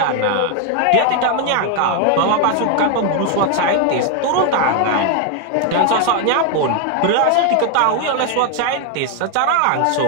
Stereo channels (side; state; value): both; different; correlation 0.01